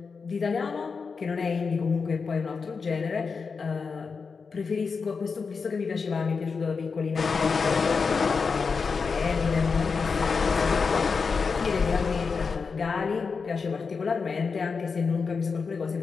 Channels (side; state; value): right; quieter; 5.1 dB